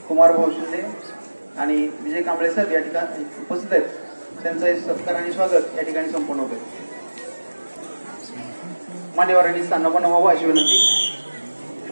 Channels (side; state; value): both; inverted; correlation -1.00